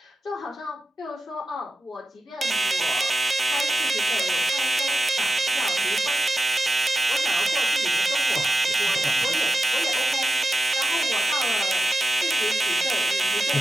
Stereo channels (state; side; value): normal; both; correlation 0.90